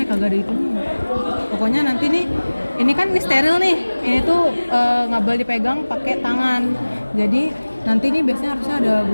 ya, kagak ada itu. Pokoknya nanti nih, ini kan ini steril nih. Ini tuh nggak boleh dipegang pakai tangan. Jadi nanti nih biasanya harusnya ada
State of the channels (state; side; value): inverted; both; correlation -1.00